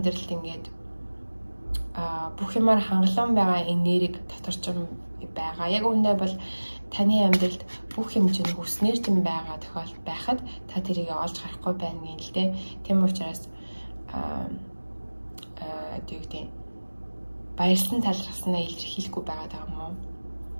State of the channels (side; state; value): both; inverted; correlation -1.00